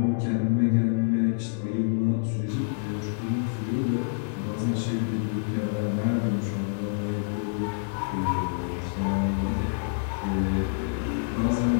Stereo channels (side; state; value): right; silent; digital silence